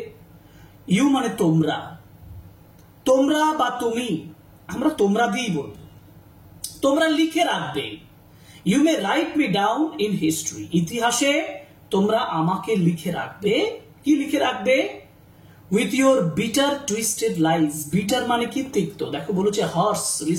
ইউ মানে তোমরা, তোমরা বা তুমি, আমরা তোমরা দিয়েই বলবো, তোমরা লিখে রাখবে। You may write me down in history, ইতিহাসে তোমরা আমাকে লিখে রাখবে। কি লিখে রাখবে? With your bitter twisted lies. Bitter মানে কি? তিক্ত। দেখো বলেছে হার্স,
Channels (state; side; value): identical; both; correlation 1.00